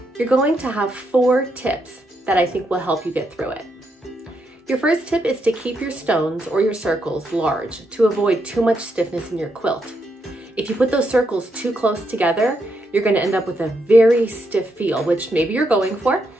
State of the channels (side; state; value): both; normal; correlation 0.80